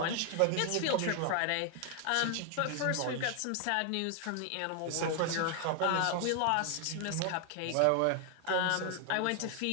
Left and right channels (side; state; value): both; different; correlation 0.00